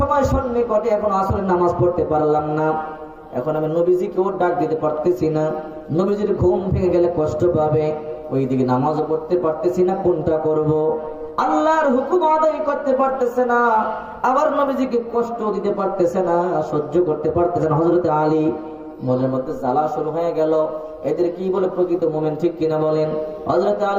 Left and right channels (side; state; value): both; identical; correlation 1.00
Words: সন্নিকটে, এখন আসরের নামাজ পড়তে পারলাম না, এখন আমি নবীজিকেও ডাক দিতে পারতেছি না, নবীজির ঘুম ভেঙে গেলে কষ্ট পাবে, ওইদিকে নামাজও পড়তে পারতেছি না, কোনটা করব? আল্লাহর হুকুম আদায় করতে পারতেছে না, আবার নবীজিকে কষ্ট দিতে পারতেছে না, সহ্য করতে পারতেছে না। হযরত আলী মনের মধ্যে জ্বালা শুরু হয়ে গেল, এদের কি বলে প্রকৃত মুমিন, ঠিক কিনা বলেন? হযরত